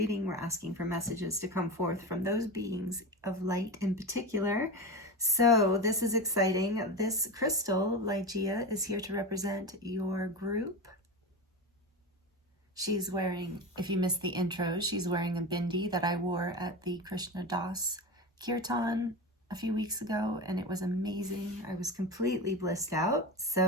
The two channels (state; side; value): normal; both; correlation 0.23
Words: we're asking for messages to come forth from those beings of light in particular. So this is exciting. This crystal, Ligea, is here to represent your group. She's wearing, if you missed the intro, she's wearing a bindi that I wore at the Krishna Das Kirtan a few weeks ago, and it was amazing. I was completely blissed out.